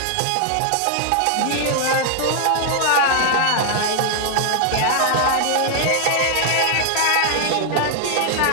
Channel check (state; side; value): different; both; correlation 0.00